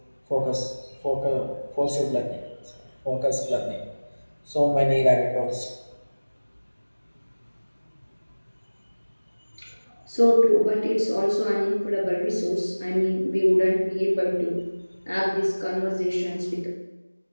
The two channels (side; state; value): both; inverted; correlation -1.00